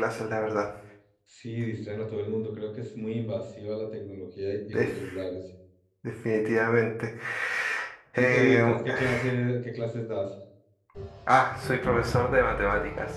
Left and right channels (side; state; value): both; identical; correlation 1.00